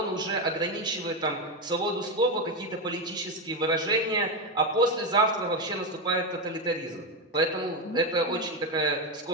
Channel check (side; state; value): both; normal; correlation 0.11